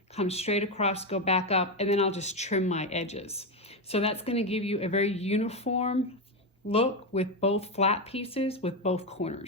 come straight across, go back up, and then I'll just trim my edges. So that's going to give you a very uniform look with both flat pieces with both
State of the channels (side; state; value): both; normal; correlation 0.10